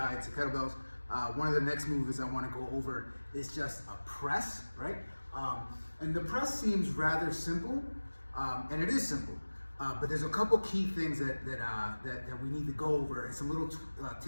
to kettlebells. One of the next moves I want to go over is just a press, right? And the press seems rather simple, and it is simple. But there's a couple key things that we need to go over, and some little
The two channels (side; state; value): both; inverted; correlation -1.00